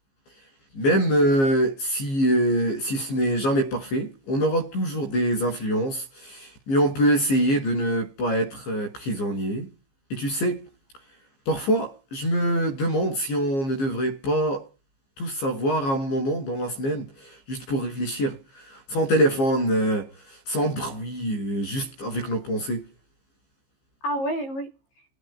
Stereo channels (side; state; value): right; late; 15 ms